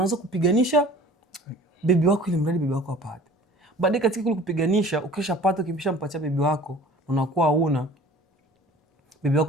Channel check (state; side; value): normal; both; correlation 0.46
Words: kupiganisha bibi wako ili mradi bibi wako apate. Baadaye katika kule kupiganisha, ukishapata ukimshampatia bibi wako, unakuwa huna. Bibi